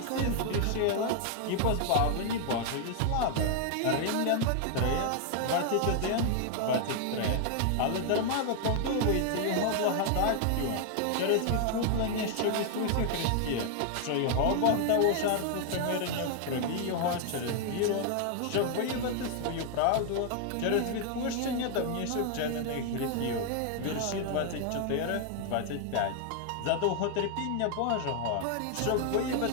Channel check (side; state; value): both; different; correlation 0.00